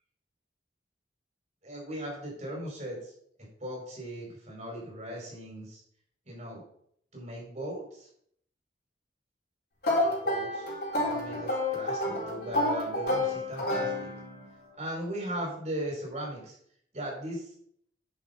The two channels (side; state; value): both; normal; correlation 0.06